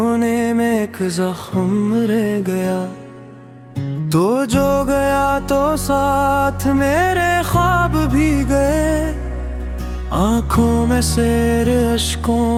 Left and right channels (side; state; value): both; identical; correlation 1.00